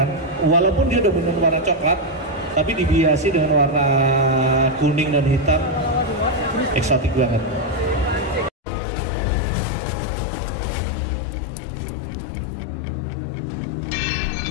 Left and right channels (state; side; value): drops out; right; at 8.5 s